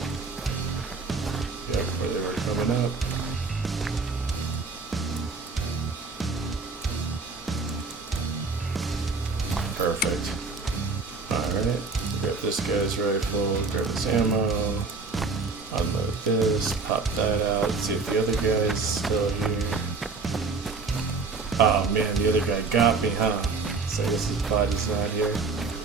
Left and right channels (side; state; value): left; quieter; 4.3 dB